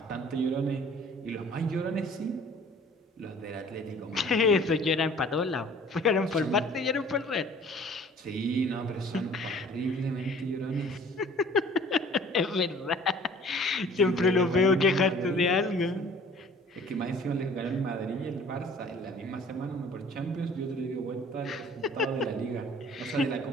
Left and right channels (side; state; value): both; normal; correlation 0.50